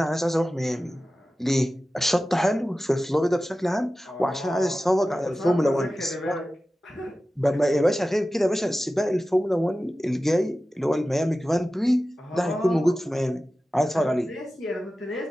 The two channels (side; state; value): both; normal; correlation 0.95